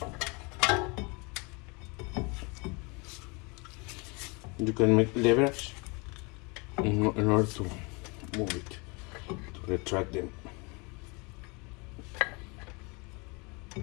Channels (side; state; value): right; quieter; 29.4 dB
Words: you can make leverage in order to move it, to retract them.